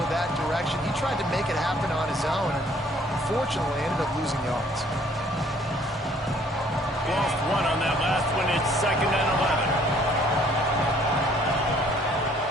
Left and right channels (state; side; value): normal; both; correlation 0.60